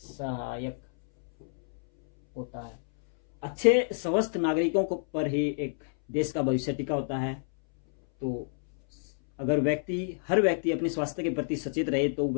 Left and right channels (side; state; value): right; silent; 59 dB below the other